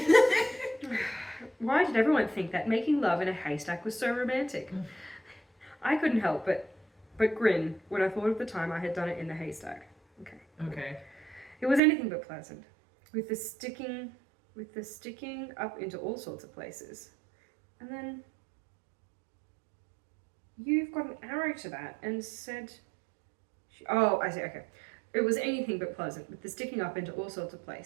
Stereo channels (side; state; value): left; drops out; at 11.8 s